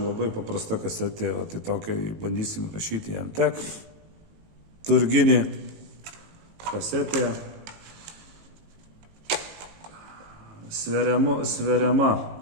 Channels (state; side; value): late; left; 19 ms